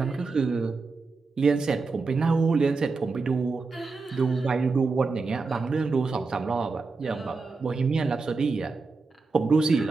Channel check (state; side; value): quieter; left; 4.1 dB